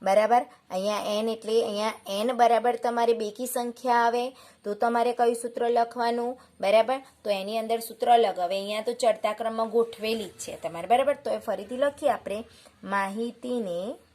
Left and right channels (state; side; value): identical; both; correlation 1.00